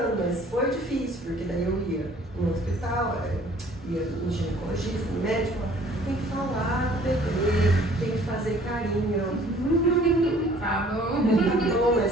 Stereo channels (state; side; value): normal; both; correlation 0.55